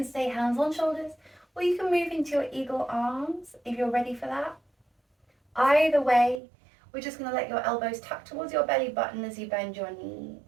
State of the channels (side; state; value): left; drops out; at 6.4 s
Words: stay hands on shoulders, or you can move into your eagle arms if you're ready for that. Either way, we're just going to let your elbows tuck towards your belly button as you bend your knees.